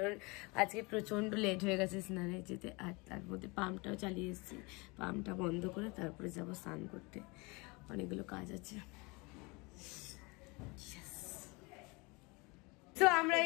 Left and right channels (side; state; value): right; quieter; 27.0 dB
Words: আজকে প্রচণ্ড লেট হয়ে গেছে স্নানে যেতে। আর তার মধ্যে পাম্পটাও চালিয়ে এসেছি, পাম্পটা বন্ধ করে তারপরে যাবো স্নান করতে, অনেকগুলো কাজ আছে। তো আমরা